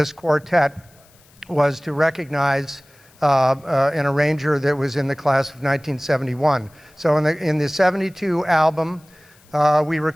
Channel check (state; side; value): noise; left; hiss, 30 dB below the sound